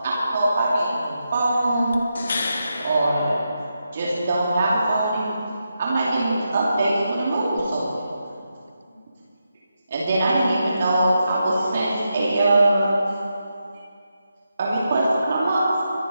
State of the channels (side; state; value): both; inverted; correlation -0.86